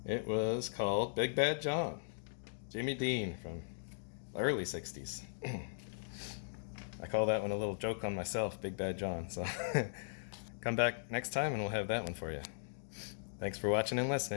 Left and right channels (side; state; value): right; silent; digital silence